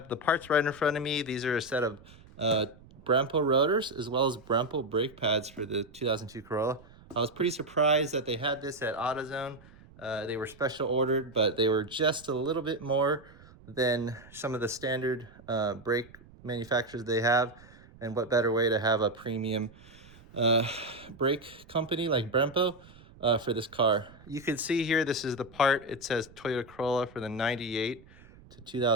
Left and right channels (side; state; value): right; noise; rumble, 23 dB below the sound